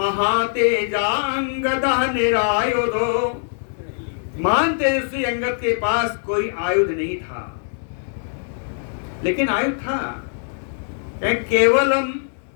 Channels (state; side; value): silent; right; digital silence